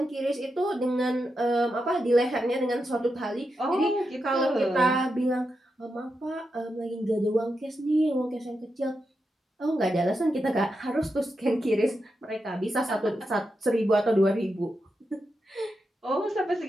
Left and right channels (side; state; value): both; normal; correlation 0.87